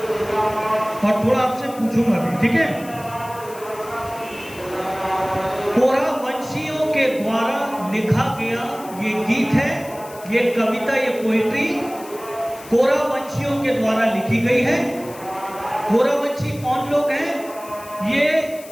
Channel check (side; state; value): left; noise; hiss, 19 dB below the sound